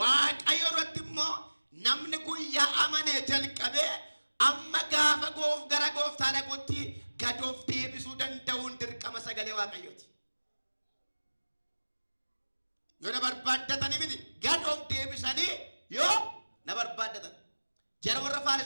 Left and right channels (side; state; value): both; inverted; correlation -1.00